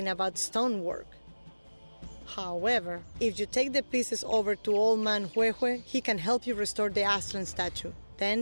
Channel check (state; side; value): inverted; both; correlation -1.00